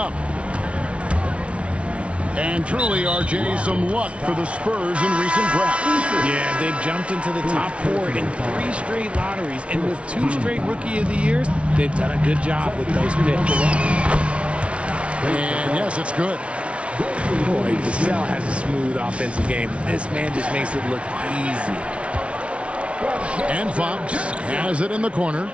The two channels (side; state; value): left; late; 0.061 ms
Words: And truly, RJ, some luck for the Spurs in recent drafts. Yeah, they've jumped into the top 4 in 3 straight lotteries. And with 2 straight Rookie of the Years, they've done a good job with those picks. And yes, it's good. Boy, Vassell has a smooth offensive game. This man just makes it look easy. And Fox has it in the corner.